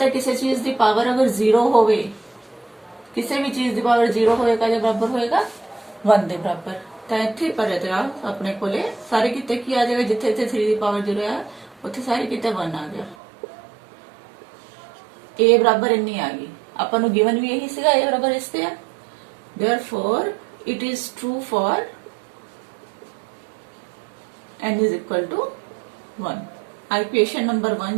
है किसी चीज की पावर अगर 0 होवे, किसी भी चीज की पावर 0 होएगा जे बराबर होएगा 1 दे बराबर, तो इत्थे पर अपने कोले सारे किते की आ जाएगा, जिथे इत्थे 3 दी पावर 0 है उत्थे सारे किते 1 आ गया, a बराबर इन्नी आ गई। आपां नू गिवन भी यही सीगा, a बराबर इस ते है, therefore it is true for n is equal to 1। Equation number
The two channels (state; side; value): drops out; left; at 13.2 s